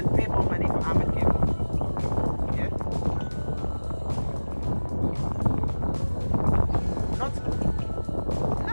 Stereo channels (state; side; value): inverted; both; correlation -1.00